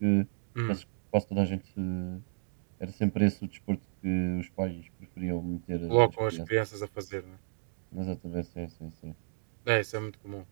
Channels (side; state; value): left; silent; digital silence